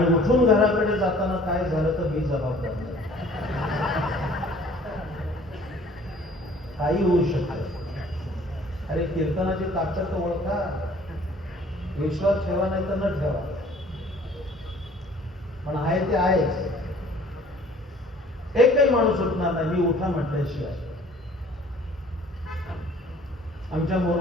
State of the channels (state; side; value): normal; both; correlation 0.54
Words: उठून घराकडे जाताना काय झालं तर मी जबाबदार नाही. काही होऊ शकतं. अरे कीर्तनाची ताकद तर ओळखा, विश्वास ठेवा नाही तर न ठेवा, पण आहे ते आहेच. एकही माणूस उठणार नाही मी उठा म्हटल्याशिवाय. आमच्या